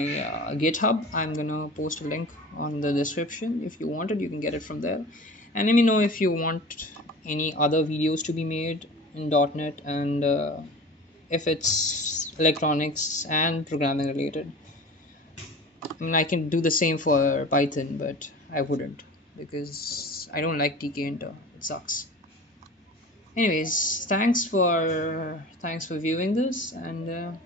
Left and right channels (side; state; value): both; normal; correlation 0.37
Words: GitHub. I'm gonna post a link on the description. If you want it, you can get it from there. And let me know if you want any other videos to be made in .NET, and if it's electronics and programming related. I mean, I can do the same for Python, but I wouldn't, because I don't like tkinter. It sucks. Anyways, thanks for viewing this, and